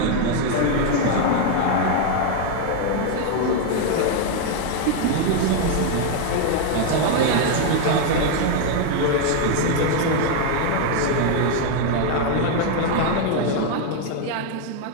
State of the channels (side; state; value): both; different; correlation 0.01